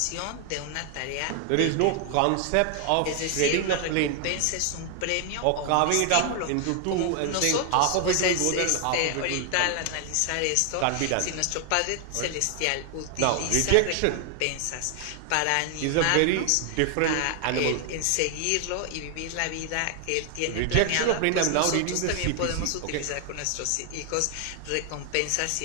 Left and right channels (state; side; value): different; both; correlation 0.00